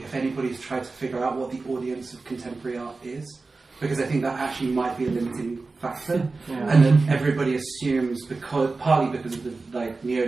if anybody's tried to figure out what the audience of contemporary art is, because I think that actually might be a limiting factor, and then everybody assumes, partly because of the like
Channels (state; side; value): quieter; left; 3.8 dB